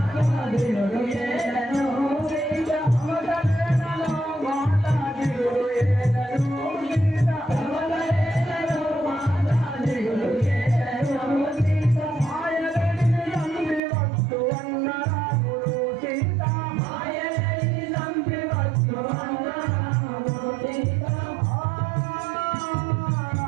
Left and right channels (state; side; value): drops out; left; at 13.8 s